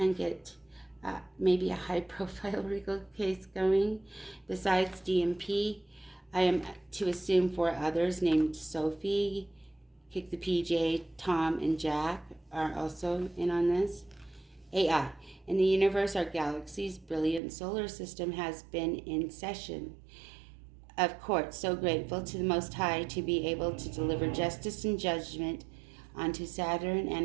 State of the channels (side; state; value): left; drops out; at 17.4 s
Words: get maybe a high-profile legal case going. Besides DMP, I am to assume 4 others named Sophie, Kick the PJ, Tom, and Jack are also in on this. AI. In the universe, our galaxy's brilliant solar system has been in session of court. So grateful to the Most High to be able to deliver justice and judgment onto Saturn and